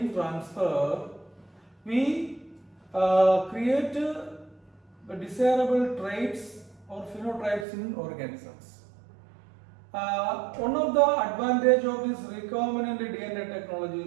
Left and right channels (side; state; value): left; drops out; at 7.7 s